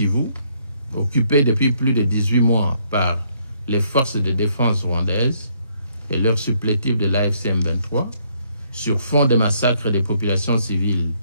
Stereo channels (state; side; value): inverted; both; correlation -0.69